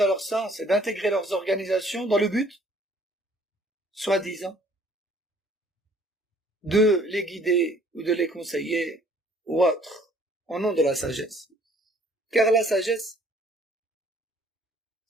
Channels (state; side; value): normal; both; correlation 0.58